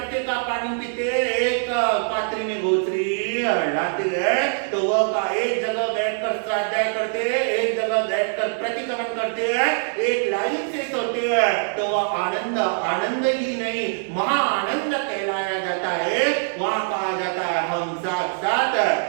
का पानी पीते, एक पात्री में गोचरी लाते हैं, तो वह का एक जगह बैठकर स्वाध्याय करते हैं, एक जगह बैठकर प्रतिक्रमण करते हैं, एक लाइन से सोते हैं, तो वह आनंद आनंद ही नहीं महा आनंद कहलाया जाता है। वहां कहा जाता है हम साथ साथ है,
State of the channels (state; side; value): silent; left; 63 dB below the other